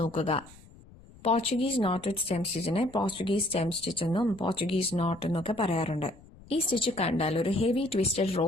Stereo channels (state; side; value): noise; left; rumble, 22 dB below the sound